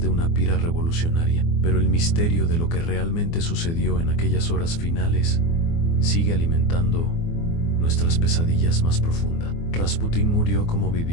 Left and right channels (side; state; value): right; late; 24 ms